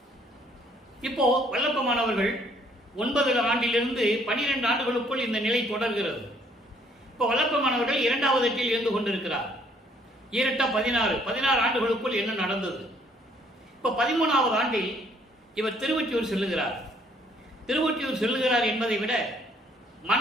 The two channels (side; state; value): both; normal; correlation 0.64